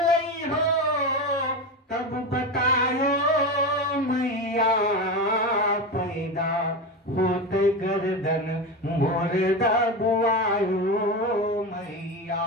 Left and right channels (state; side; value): normal; both; correlation 0.20